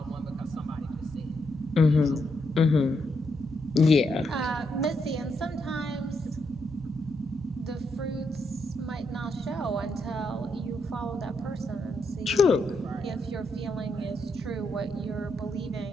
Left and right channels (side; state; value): both; normal; correlation 0.80